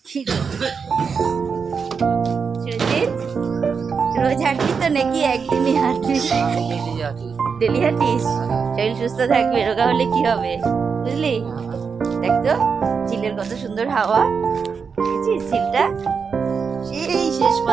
সুজিত, রোজ হাঁটবি তো নাকি একদিনই হাঁটবি? ডেলি হাঁটিস? শরীর সুস্থ থাকবে, রোগা হলে কি হবে বুঝলি? দেখ তো ঝিলের কত সুন্দর হাওয়া, দেখেছিস ঝিলটা? সেই শেষ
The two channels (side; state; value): left; quieter; 5.8 dB